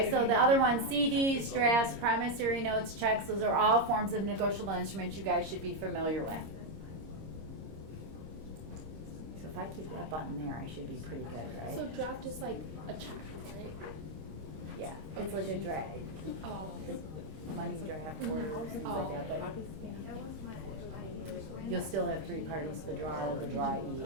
so the other ones, CDs, drafts, promissory notes, checks, those are all forms of negotiable instruments you guys should be familiar with. So if I keep that button there, I should be pretty good, right? So draft is like a check, right? Yeah, it's like a draft, Oh. money draft, orders, things like that, but yeah. You'll still have 3 parties, the drawer, the drawee,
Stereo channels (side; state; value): left; late; 26 ms